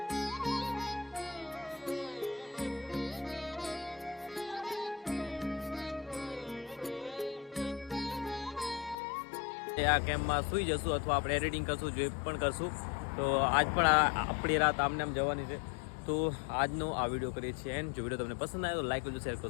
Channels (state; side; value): drops out; right; at 9.0 s